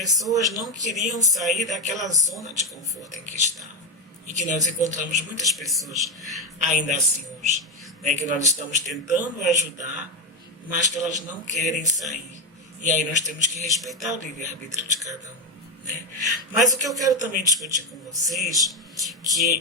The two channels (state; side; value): normal; both; correlation 0.12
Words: não queriam sair daquela zona de conforto em que estavam. E que nós encontramos muitas pessoas ainda assim hoje, né? Que nós estamos tentando ajudar, mas que elas não querem sair. E aí nós temos que respeitar o livre-arbítrio de cada um. Né? Mas o que eu quero também discutir com vocês,